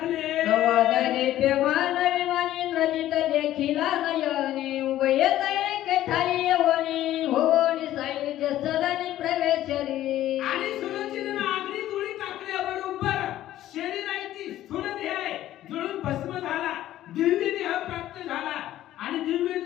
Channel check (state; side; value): quieter; right; 13.5 dB